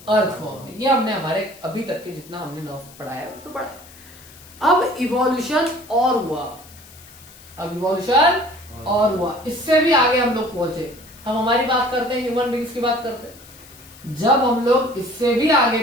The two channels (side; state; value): left; noise; hiss, 22 dB below the sound